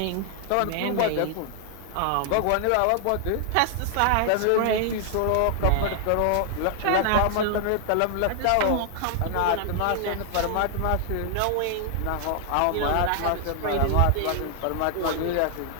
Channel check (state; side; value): different; both; correlation 0.00